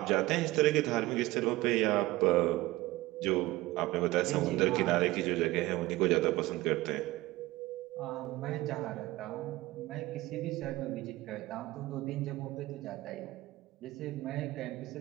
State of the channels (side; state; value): left; quieter; 18.5 dB